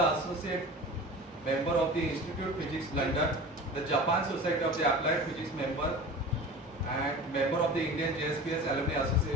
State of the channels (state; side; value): normal; both; correlation 0.35